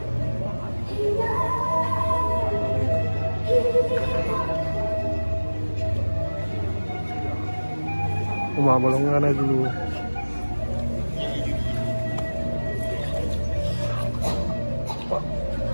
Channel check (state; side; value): inverted; both; correlation -1.00